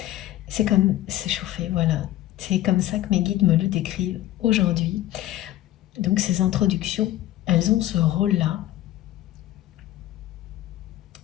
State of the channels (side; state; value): right; quieter; 14.5 dB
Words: C'est comme s'échauffer, voilà. C'est comme ça que mes guides me le décrivent aujourd'hui. Donc ces introductions, elles ont ce rôle-là